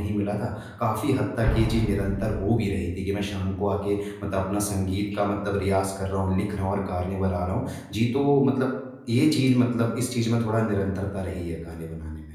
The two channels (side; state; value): both; identical; correlation 1.00